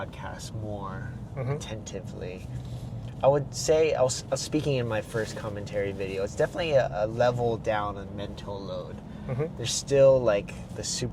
more attentively. I would say, I was speaking in my first commentary video, it's definitely a level down on mental load. Mm-hmm. There's still like the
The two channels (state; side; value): identical; both; correlation 1.00